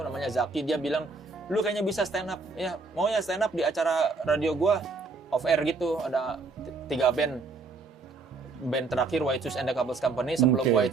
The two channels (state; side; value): quieter; left; 3.9 dB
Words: namanya Zaki, dia bilang, "Lu kayaknya bisa stand up." Ya, mau ya stand up di acara radio gua off air gitu, ada 3 band. Band terakhir White Shoes and the Couples Company, sebelum White